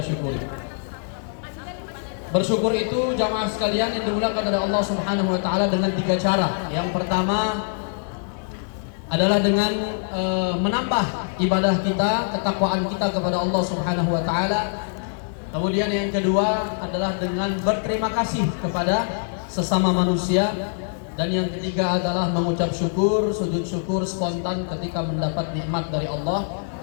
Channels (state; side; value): silent; right; digital silence